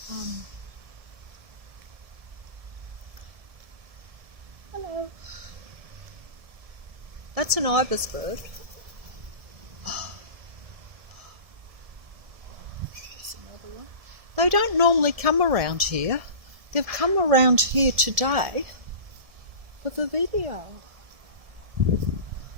Hello. That's an ibis bird. They don't normally come around here. They've come around here today for the video.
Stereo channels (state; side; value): late; left; 1.7 ms